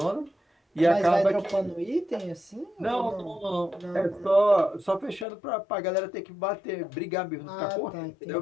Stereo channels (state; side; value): drops out; right; at 5.2 s